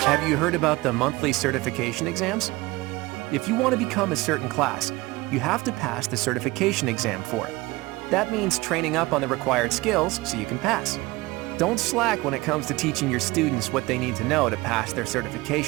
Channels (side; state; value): left; quieter; 21.0 dB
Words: you heard about the monthly certification exams? If you want to become a certain class, you have to pass the certification exam for it. That means training up on the required skills so you can pass. Don't slack when it comes to teaching your students what they need to know to pass their